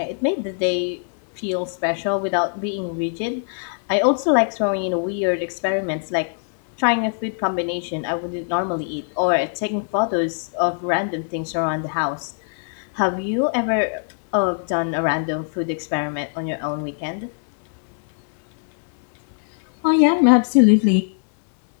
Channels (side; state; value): right; silent; 64 dB below the other